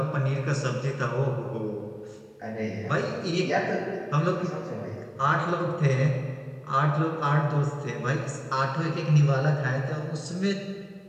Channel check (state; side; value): identical; both; correlation 1.00